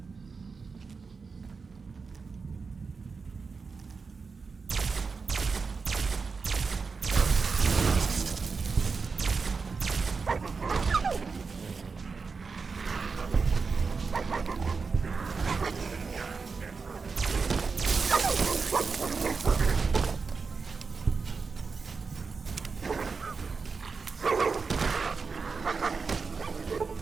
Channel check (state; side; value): quieter; left; 4.8 dB